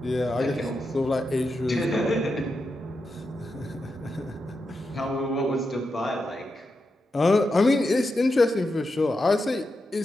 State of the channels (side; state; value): both; normal; correlation 0.87